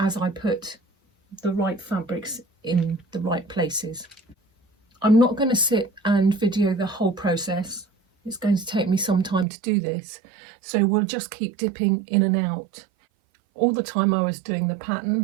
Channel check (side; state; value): left; drops out; at 9.5 s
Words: I put the right fabrics in the right places. I'm not going to sit and video the whole process. It's going to take me some time to do this, so we'll just keep dipping in and out. All the time I was doing the